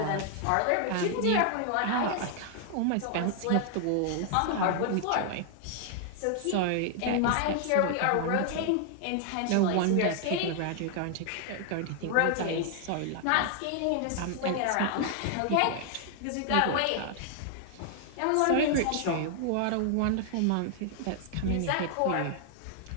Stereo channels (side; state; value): both; different; correlation 0.00